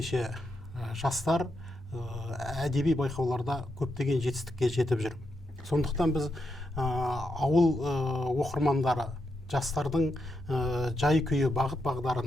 жастар әдеби байқауларда көптеген жетістікке жетіп жүр. Сондықтан біз ауыл оқырмандары жастардың жай күйі бағыт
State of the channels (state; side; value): normal; both; correlation 0.84